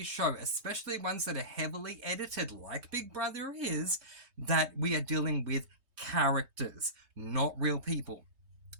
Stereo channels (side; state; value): left; late; 3.2 ms